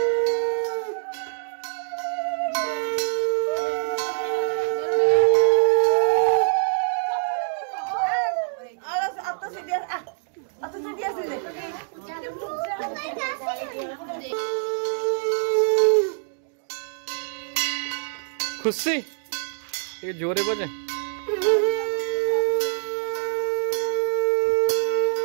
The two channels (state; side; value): silent; left; digital silence